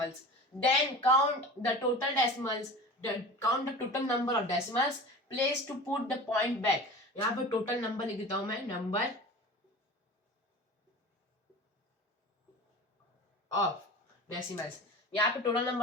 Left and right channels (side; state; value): both; normal; correlation 0.35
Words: then count the total decimals, count the total number of decimals, place to put the point back. यहाँ पे टोटल नंबर लिख देता हूं मैं, नंबर ऑफ डेसिमल्स, यहाँ पे टोटल